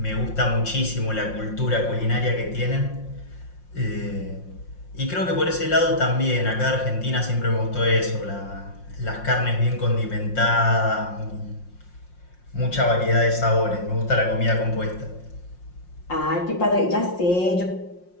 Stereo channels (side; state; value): right; late; 5.6 ms